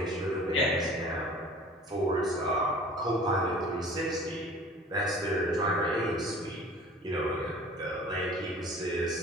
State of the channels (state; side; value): normal; both; correlation 0.45